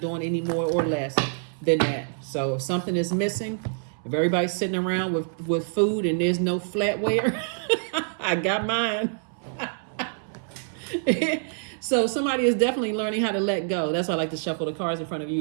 any more or less than that. So if something is missing, if everybody's sitting around with food and there's no flatware, I got mine. So somebody is definitely learning how to let go. That's why I like to shuffle the cards in front of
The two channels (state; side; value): silent; left; 61 dB below the other